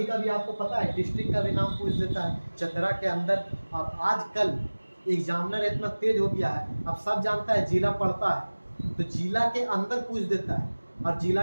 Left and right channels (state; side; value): inverted; both; correlation -1.00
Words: कभी आपको पता है डिस्ट्रिक्ट का भी नाम पूछ देता है चतरा के अंदर। अब आजकल एग्जामिनर इतना तेज हो गया है, अब सब जानता है जिला पढ़ता है तो जिला के अंदर पूछ देता है और जिला